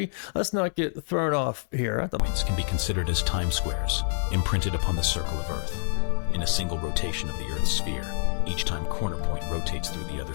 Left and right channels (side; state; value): right; silent; digital silence